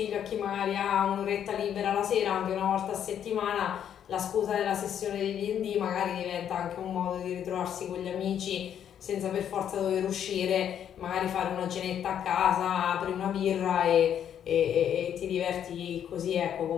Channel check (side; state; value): right; quieter; 9.4 dB